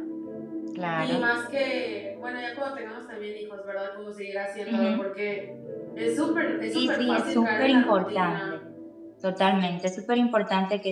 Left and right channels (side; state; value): both; identical; correlation 1.00